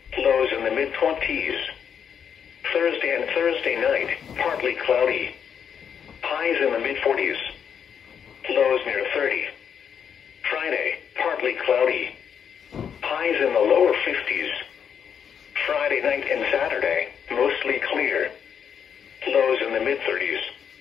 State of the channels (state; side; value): quieter; right; 7.7 dB